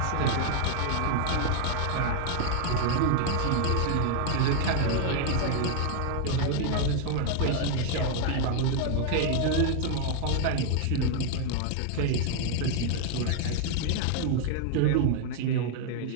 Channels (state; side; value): different; both; correlation 0.00